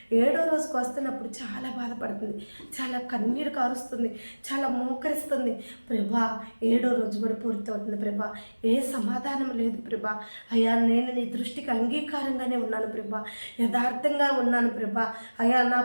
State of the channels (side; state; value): both; inverted; correlation -1.00